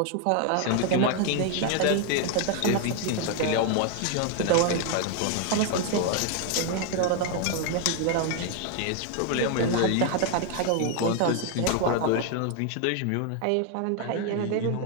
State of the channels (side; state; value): both; different; correlation 0.01